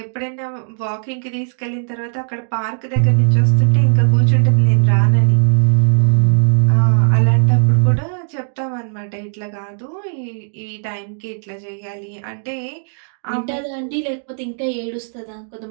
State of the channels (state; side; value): silent; left; digital silence